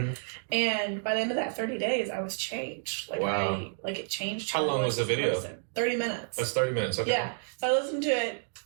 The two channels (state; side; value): silent; left; digital silence